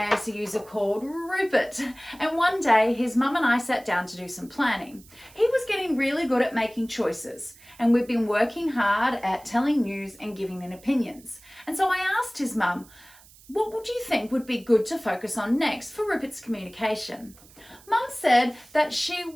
user called Rupert, and one day his mum and I sat down to do some planning. He was getting really good at making choices, and we've been working hard at telling news and giving in opinions. And so I asked his mum, what would you think would be good to focus on next for Rupert's communication? Mum said that she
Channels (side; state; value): right; noise; hiss, 24 dB below the sound